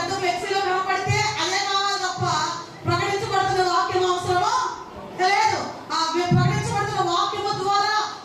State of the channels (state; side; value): identical; both; correlation 1.00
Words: ఫ్లెక్సీలో కనపడితే అదే కావాలి తప్ప ప్రకటించబడుతున్న వాక్యం అవసరమో లేదు. ఆ ప్రకటించబడుతున్న వాక్యము ద్వారా